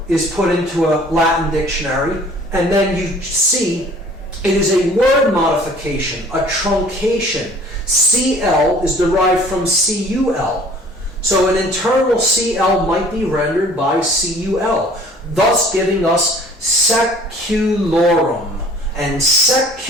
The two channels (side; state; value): both; normal; correlation 0.51